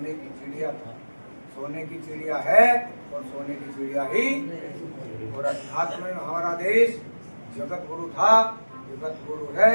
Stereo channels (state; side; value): inverted; both; correlation -1.00